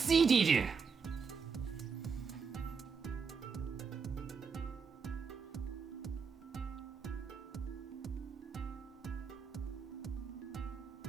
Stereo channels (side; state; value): left; quieter; 5.6 dB